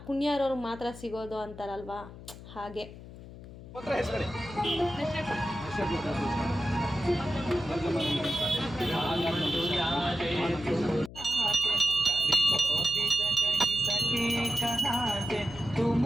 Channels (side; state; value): left; noise; hum, 15 dB below the sound